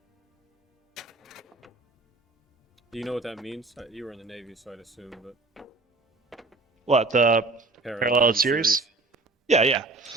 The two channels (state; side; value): quieter; left; 3.4 dB